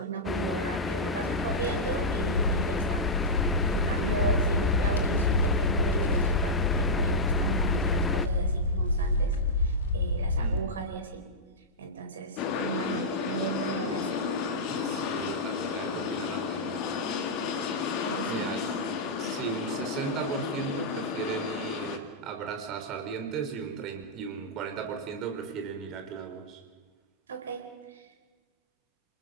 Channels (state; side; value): normal; both; correlation -0.09